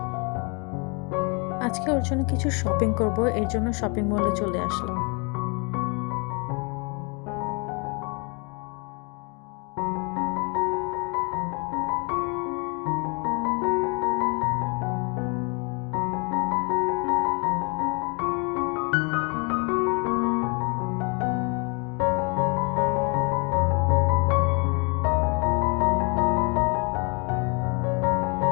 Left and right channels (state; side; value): quieter; right; 33.2 dB